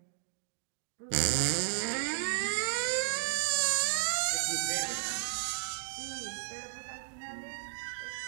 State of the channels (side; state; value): left; silent; digital silence